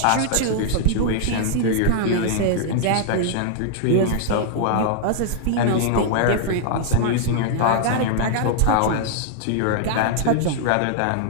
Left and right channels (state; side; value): different; both; correlation -0.01